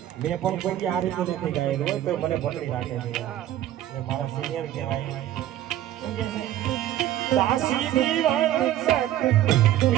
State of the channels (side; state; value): left; quieter; 12.7 dB